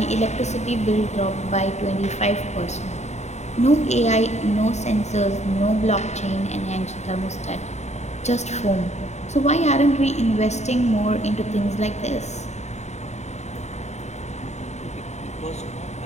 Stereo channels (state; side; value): late; right; 0.33 ms